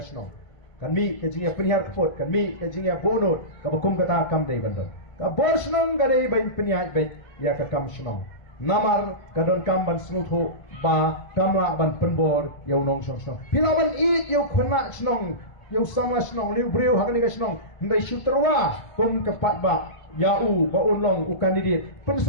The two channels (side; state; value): right; late; 1.5 ms